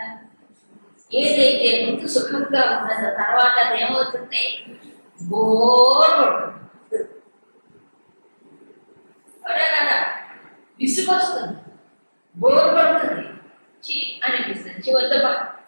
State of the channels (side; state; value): both; inverted; correlation -1.00